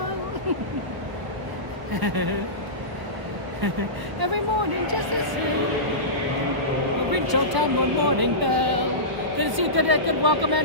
Every morning just the same. We'll ring Town one morning bell. Good to see you. Good welcome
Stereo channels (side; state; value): left; late; 1.3 ms